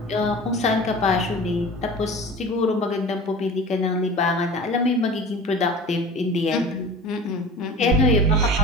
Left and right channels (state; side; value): normal; both; correlation 0.38